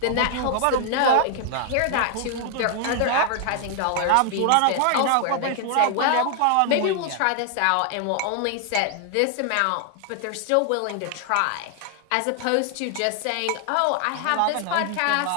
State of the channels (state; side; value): different; both; correlation 0.00